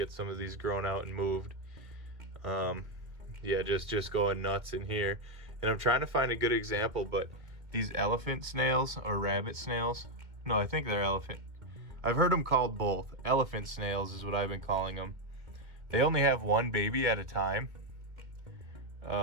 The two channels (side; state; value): left; late; 2.2 ms